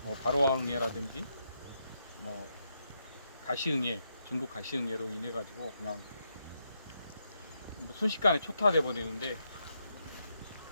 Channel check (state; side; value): inverted; both; correlation -0.81